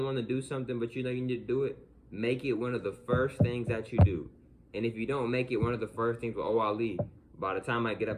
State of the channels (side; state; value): both; identical; correlation 1.00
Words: want to do something, but you know you need to do it, make it one of the first things that you do. And if you don't make it one of the first things, well, I'll leave. By the time I get up,